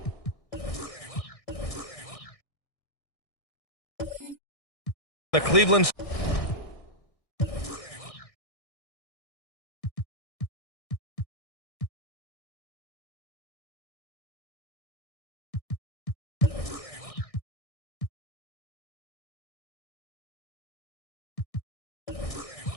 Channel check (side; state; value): right; late; 1.6 ms